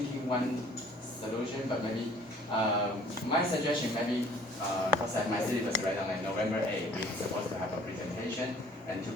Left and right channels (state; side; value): normal; both; correlation 0.55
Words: one solution, but maybe my suggestion maybe because my syllabus right on like November 8th, we're supposed to have a presentation, and to